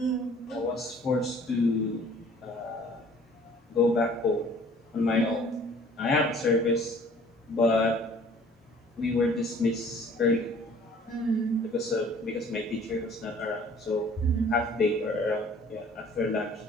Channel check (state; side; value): normal; both; correlation 0.53